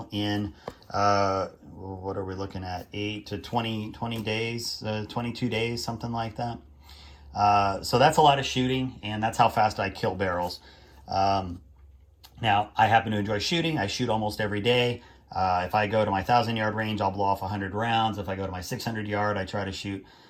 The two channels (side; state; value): both; identical; correlation 1.00